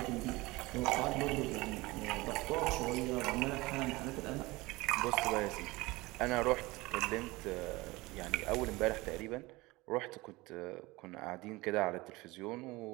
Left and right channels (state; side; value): quieter; left; 21.7 dB